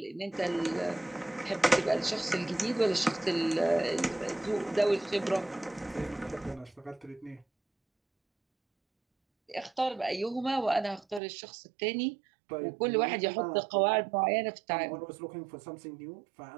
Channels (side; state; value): left; drops out; at 11.2 s